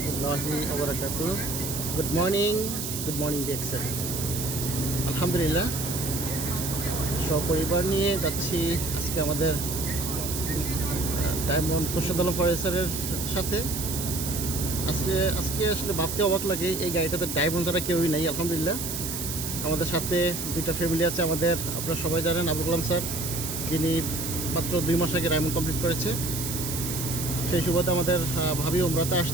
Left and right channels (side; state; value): right; noise; hiss, 5 dB below the sound